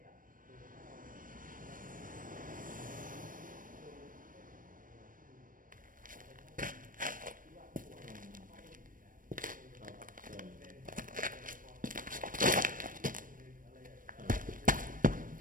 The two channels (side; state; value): left; late; 0.40 ms